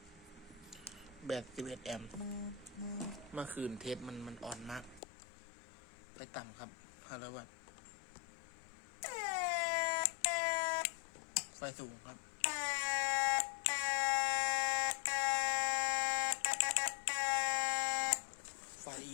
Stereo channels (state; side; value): drops out; right; at 5.0 s